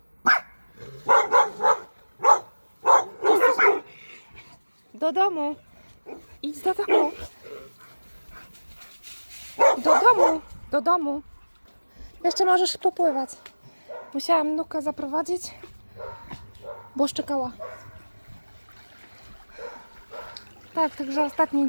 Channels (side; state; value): both; inverted; correlation -1.00